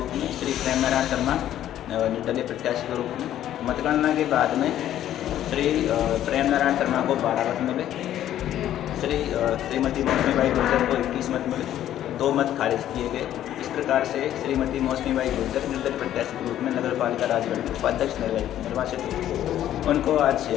में, श्री प्रेम नारायण शर्मा निर्दलीय प्रत्याशी के रूप में। मतगणना के बाद में श्री प्रेम नारायण शर्मा को 12 मत मिले, श्रीमती मौसमी बाई गुर्जर को 21 मत मिले, 2 मत खारिज किए गए। इस प्रकार से श्रीमती मौसमी बाई गुर्जर निर्दलीय प्रत्याशी के रूप में नगर पालिका राजगढ़ के उपाध्यक्ष निर्वाचित हुए। उनको आज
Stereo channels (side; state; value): right; quieter; 11.9 dB